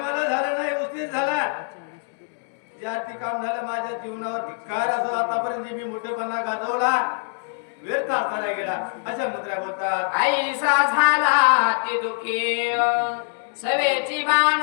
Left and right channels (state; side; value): silent; right; 63 dB below the other